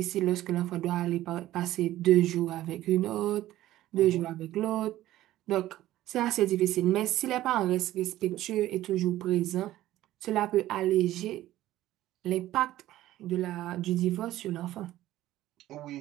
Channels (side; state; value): left; quieter; 14.7 dB